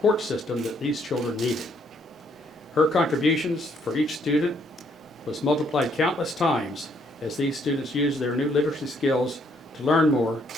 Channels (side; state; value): both; normal; correlation 0.69